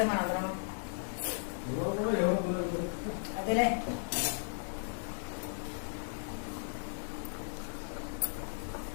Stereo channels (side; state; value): right; silent; 54 dB below the other